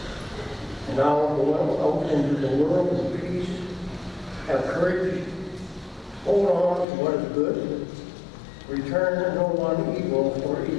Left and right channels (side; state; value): right; drops out; at 6.9 s